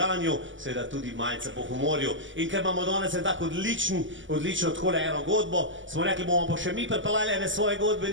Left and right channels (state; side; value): late; left; 0.55 ms